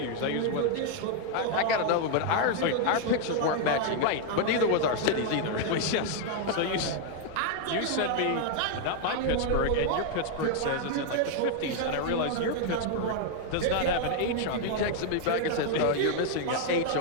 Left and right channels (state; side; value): different; both; correlation 0.00